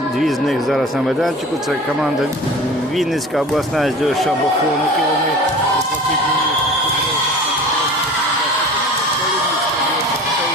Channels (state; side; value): normal; both; correlation 0.39